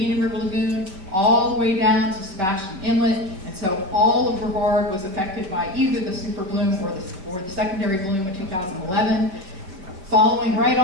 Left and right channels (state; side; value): late; left; 5.2 ms